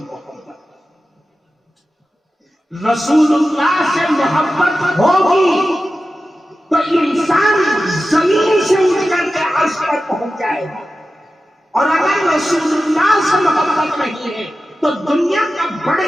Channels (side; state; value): both; normal; correlation 0.93